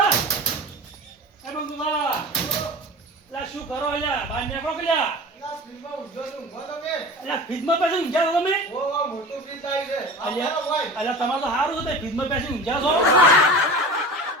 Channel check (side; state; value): both; normal; correlation 0.34